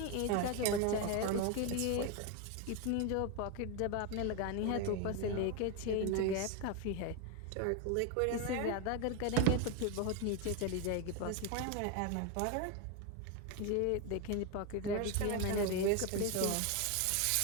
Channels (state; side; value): different; both; correlation 0.01